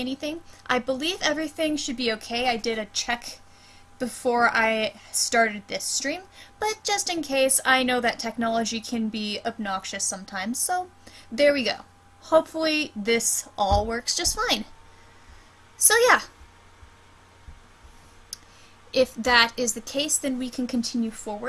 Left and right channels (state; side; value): identical; both; correlation 1.00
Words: I believe everything should be okay. I did a check before I started this stream, but just in case, I know that technology can be obnoxious sometimes, so there we go. Hopefully this all works just fine. So yeah, if that is the case, then we can continue